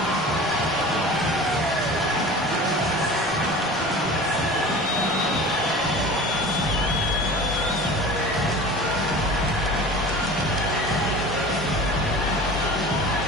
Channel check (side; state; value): both; normal; correlation 0.38